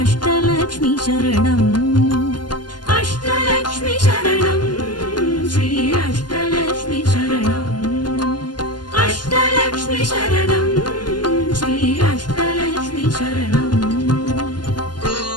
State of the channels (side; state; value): right; late; 0.71 ms